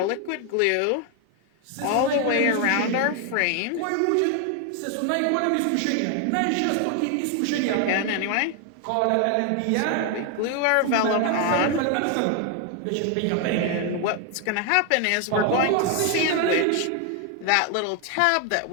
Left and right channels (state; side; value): different; both; correlation 0.01